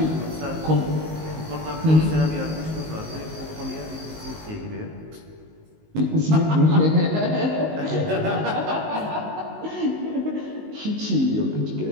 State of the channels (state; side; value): late; left; 19 ms